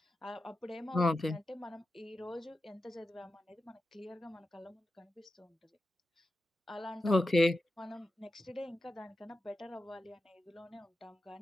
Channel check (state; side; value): normal; both; correlation 0.91